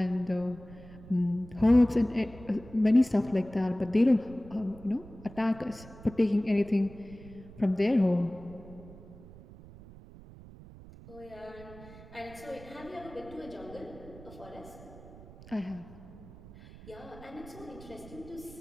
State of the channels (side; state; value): right; noise; rumble, 18 dB below the sound